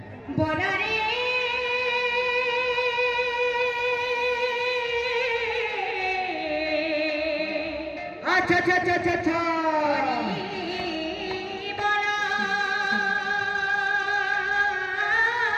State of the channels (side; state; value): both; identical; correlation 1.00